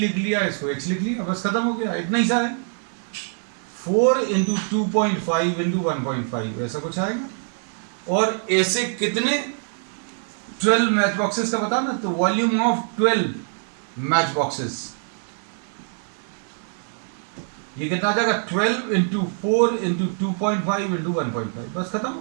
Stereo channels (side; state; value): left; silent; 63 dB below the other